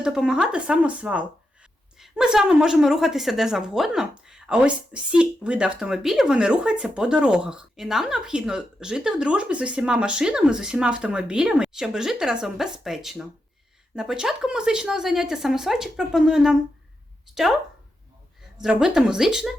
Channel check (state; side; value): normal; both; correlation 0.86